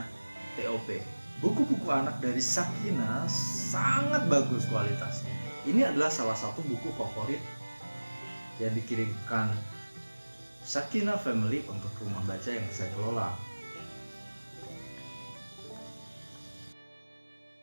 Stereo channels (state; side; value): inverted; both; correlation -1.00